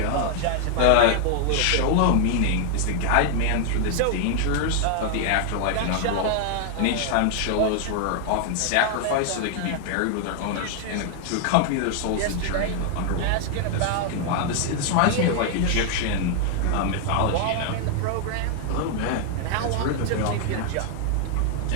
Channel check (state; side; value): different; both; correlation 0.00